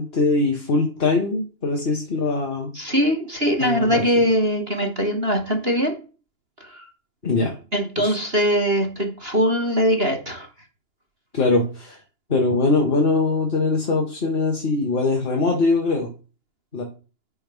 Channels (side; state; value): left; late; 2.9 ms